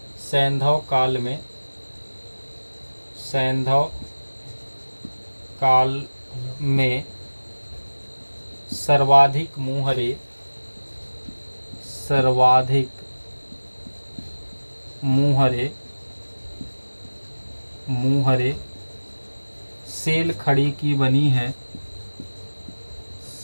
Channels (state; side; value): inverted; both; correlation -1.00